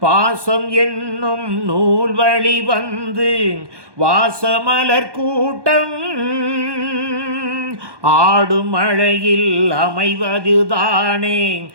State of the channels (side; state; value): left; late; 1.2 ms